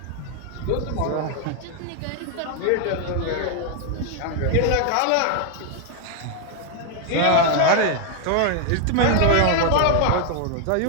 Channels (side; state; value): both; different; correlation 0.00